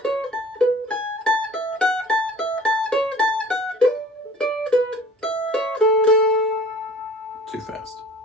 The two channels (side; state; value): both; normal; correlation 0.46